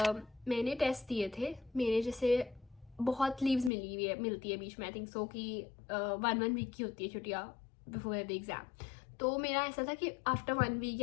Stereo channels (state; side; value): drops out; right; at 3.7 s